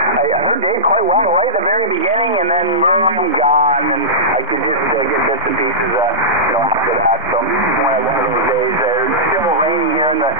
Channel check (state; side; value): normal; both; correlation -0.13